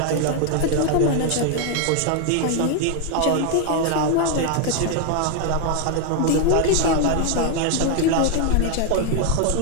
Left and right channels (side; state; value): both; different; correlation 0.00